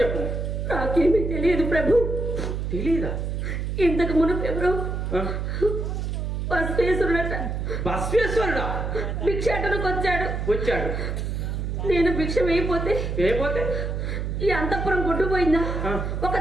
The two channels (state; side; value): noise; right; hum, 2 dB below the sound